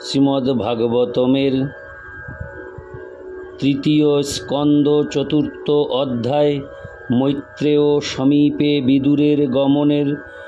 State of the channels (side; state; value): both; identical; correlation 1.00